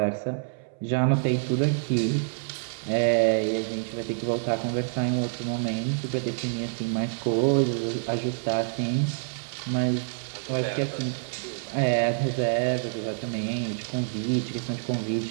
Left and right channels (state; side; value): silent; left; 60 dB below the other